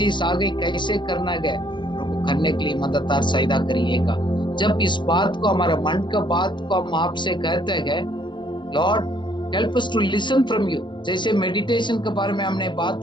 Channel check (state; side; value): late; right; 0.22 ms